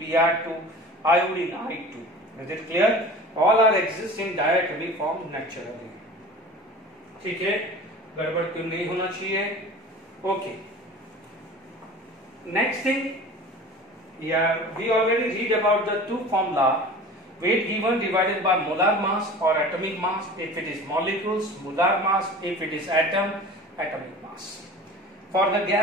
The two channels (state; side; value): normal; both; correlation 0.39